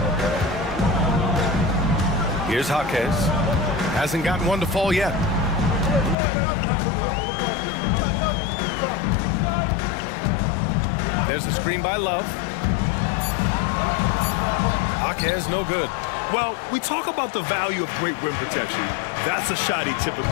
Here's Jaquez. Hasn't gotten one to fall yet. There's the screen by Love. Jaquez, no good. Well, we talk about the value of great rim protection. That's a shot he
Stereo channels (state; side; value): drops out; right; at 6.2 s